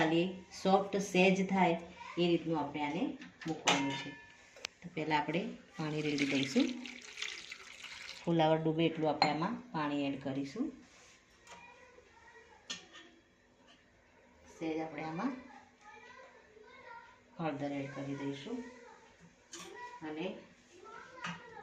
સોફ્ટ સેજ થાય એ રીતનું આપણે આને મૂકવાનું છે। તો પહેલાં આપણે પાણી રેડી દઈશું। ફુલાવર ડૂબે એટલું આપણે આમાં પાણી એડ કરીશું। સેજ આપણે આમાં હળદર એડ કરી દઈશું અને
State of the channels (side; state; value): both; identical; correlation 1.00